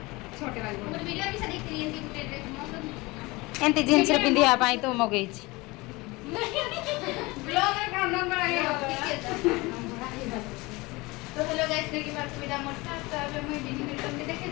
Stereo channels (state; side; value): quieter; right; 23.0 dB